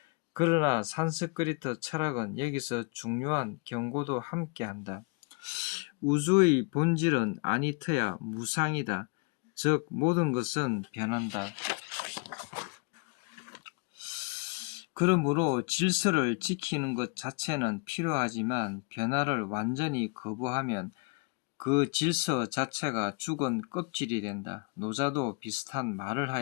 그러나 산스크리트 철학은 여기서 중요한 경고도 함께한다. 우주의 본질은 아니트야, 무상이다. 즉 모든 것은 변한다. 그러므로 질서를 지키는 것 자체는 필요하지만 변화를 완전히 거부하면 그 질서 자체가 죽은 껍질이 된다. 노자도 비슷한 말을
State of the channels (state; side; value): quieter; right; 31.3 dB